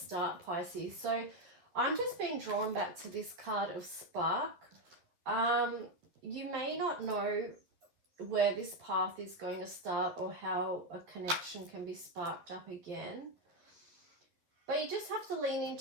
Pisces. So I'm just being drawn back to this card of spark. You may not know where this path is going to start or how a connection can be sparked up again. But you just have to lean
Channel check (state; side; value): late; left; 12 ms